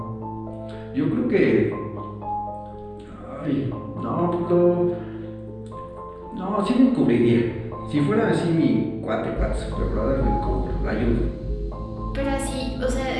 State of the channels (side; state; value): both; identical; correlation 1.00